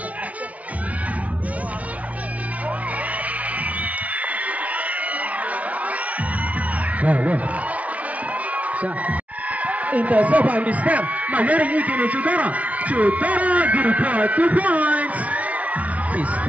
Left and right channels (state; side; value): late; left; 0.068 ms